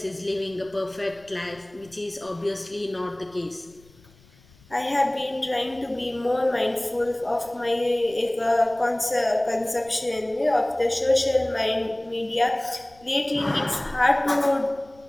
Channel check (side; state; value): left; noise; rumble, 28 dB below the sound